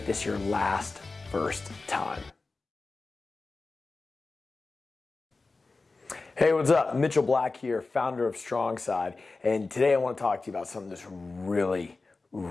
this your first time. Hey, what's up? Mitchell Black here, founder of Strongside, and today I want to talk to you about something that's really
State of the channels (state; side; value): quieter; right; 3.7 dB